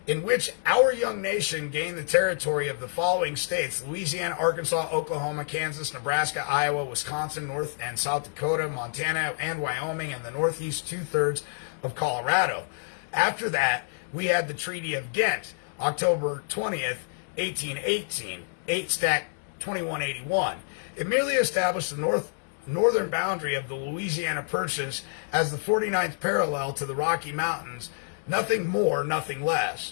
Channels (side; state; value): right; silent; digital silence